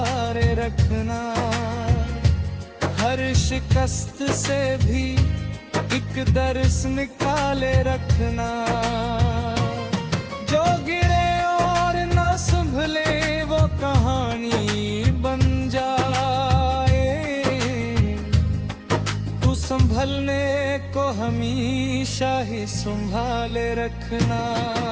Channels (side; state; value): both; identical; correlation 1.00